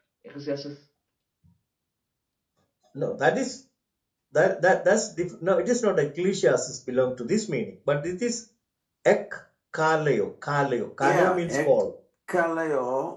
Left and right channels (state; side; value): identical; both; correlation 1.00